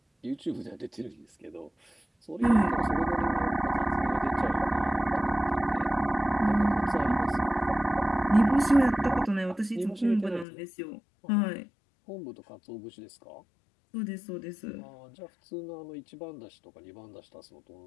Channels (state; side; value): drops out; right; at 10.5 s